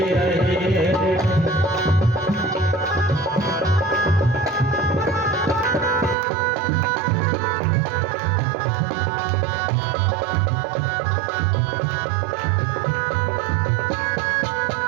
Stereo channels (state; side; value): drops out; left; at 6.2 s